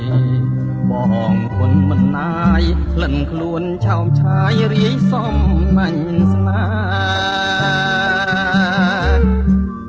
បងគុណមិនណាយក្លិនខ្លួនឆោមឆាយរាយសំណាញ់ស្នា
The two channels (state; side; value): identical; both; correlation 1.00